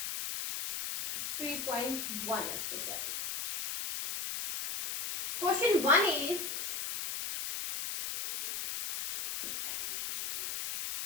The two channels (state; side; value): noise; left; hiss, 3 dB below the sound